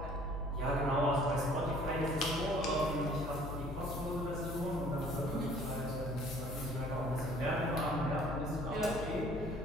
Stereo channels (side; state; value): left; noise; hum, 7 dB below the sound